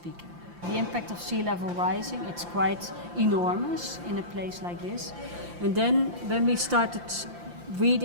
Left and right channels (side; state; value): left; late; 5.8 ms